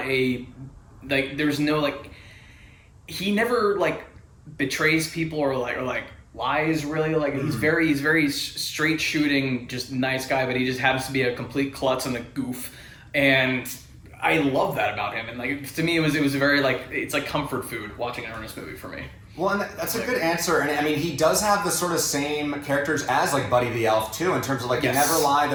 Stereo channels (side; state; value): both; identical; correlation 1.00